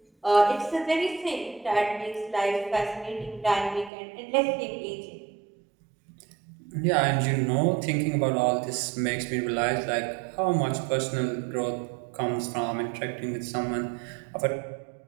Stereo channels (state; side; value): drops out; left; at 3.9 s